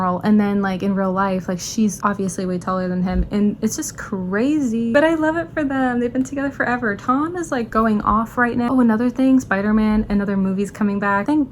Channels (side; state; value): both; identical; correlation 1.00